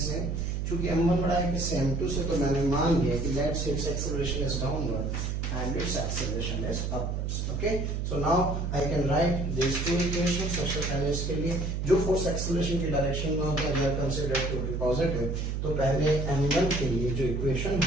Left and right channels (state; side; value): noise; right; hum, 1 dB below the sound